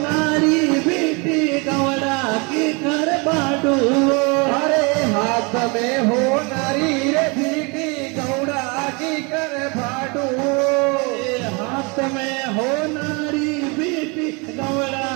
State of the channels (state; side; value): quieter; left; 30.3 dB